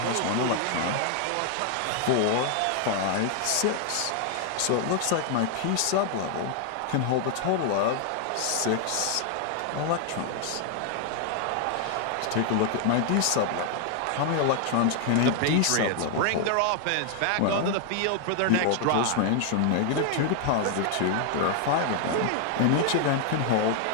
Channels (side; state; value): both; different; correlation 0.00